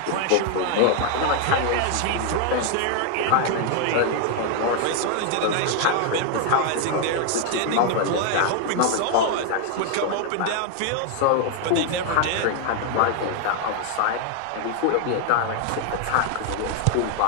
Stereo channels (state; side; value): different; both; correlation 0.00